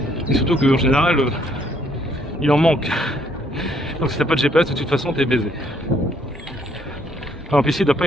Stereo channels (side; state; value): both; normal; correlation 0.68